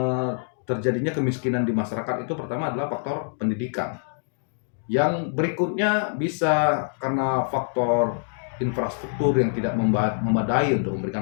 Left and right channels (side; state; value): right; silent; digital silence